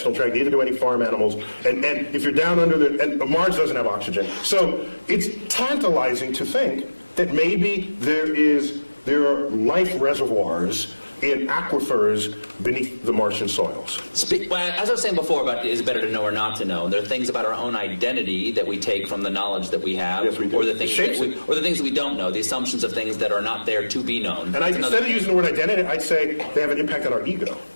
tract, neither do any farm animals. And if you're down under and Mars doesn't have oxygen. So it's tantalizing to think that maybe there are life reservoirs in aquifers beneath the Martian soils. As I was saying before about is it better to know or not to know, there are things about our own identity that we take from the knowledge that we have, Yes, we do. or the things that we don't know, the assumptions of things that are not there to be known. And instead of using the word identity, I'd say they have an impact on our ego.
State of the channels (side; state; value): both; inverted; correlation -1.00